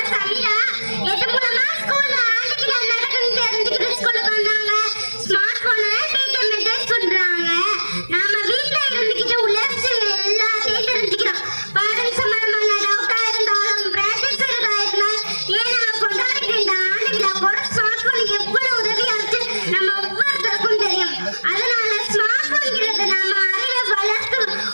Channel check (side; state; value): both; inverted; correlation -1.00